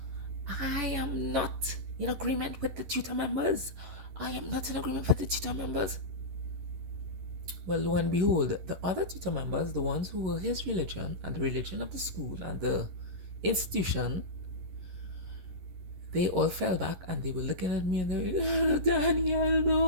I am not in agreement with the tutor members. I am not in agreement with the tutor members. Well, lo and behold, the other tutor members, the ones who were his religion and the religion of the school and the institution, they all fell back and they were looking at me and they were like, Daniel,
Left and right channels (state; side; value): late; left; 11 ms